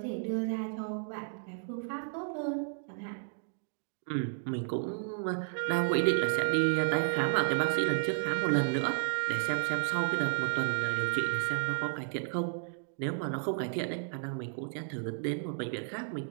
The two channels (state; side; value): silent; left; digital silence